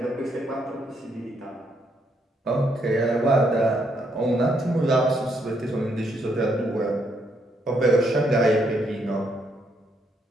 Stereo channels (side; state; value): both; normal; correlation 0.74